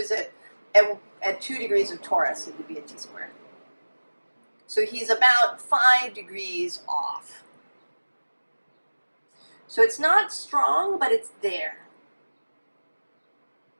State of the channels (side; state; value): both; inverted; correlation -1.00